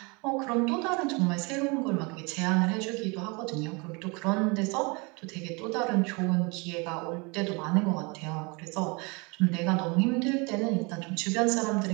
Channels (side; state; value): left; quieter; 29.1 dB